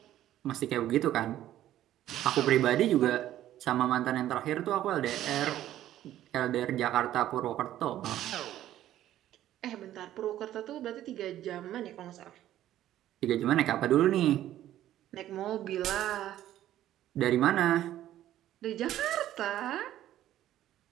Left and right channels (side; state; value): left; quieter; 12.8 dB